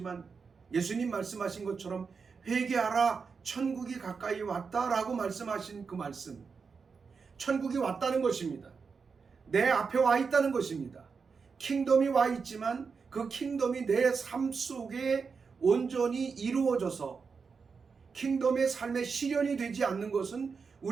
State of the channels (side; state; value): left; quieter; 5.3 dB